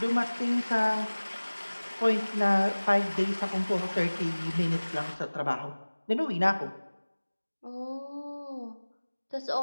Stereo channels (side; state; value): both; inverted; correlation -1.00